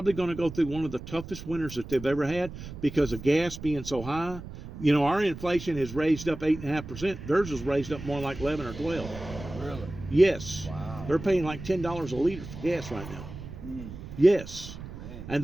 going to go through one of the toughest winters that they've ever had because of gas being so high. You know, our inflation has raised up 8.5%. Theirs is raised up more like 11 or 12. Really? Yes. Wow. They're paying like $10 a liter for gas right now. Mm. Yes. Man. And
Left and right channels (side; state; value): right; noise; rumble, 12 dB below the sound